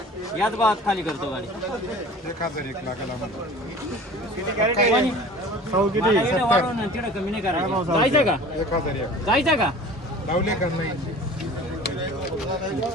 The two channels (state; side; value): normal; both; correlation 0.42